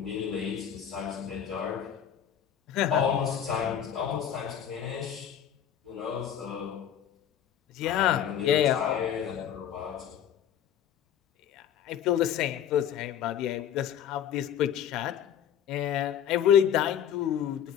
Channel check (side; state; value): right; quieter; 9.4 dB